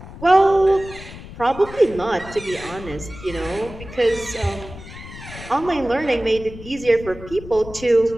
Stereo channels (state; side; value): noise; left; rumble, 14 dB below the sound